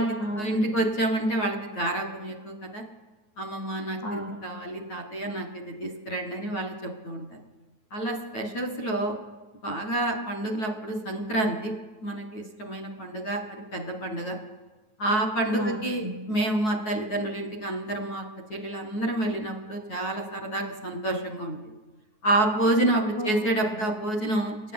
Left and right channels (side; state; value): right; late; 9.4 ms